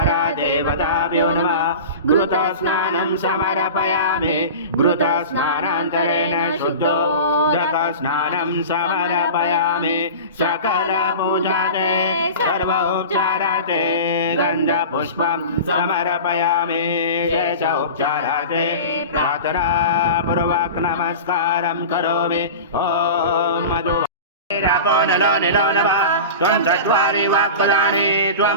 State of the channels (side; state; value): both; inverted; correlation -0.32